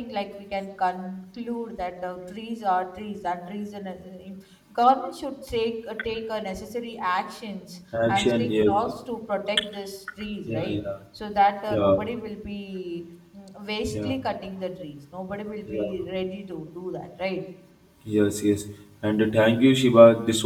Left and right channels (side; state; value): both; identical; correlation 1.00